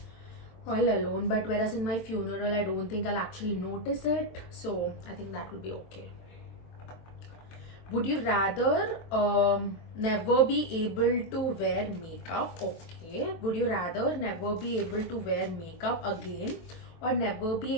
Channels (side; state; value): right; late; 23 ms